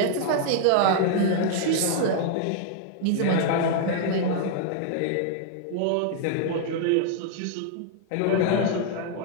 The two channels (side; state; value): both; different; correlation 0.00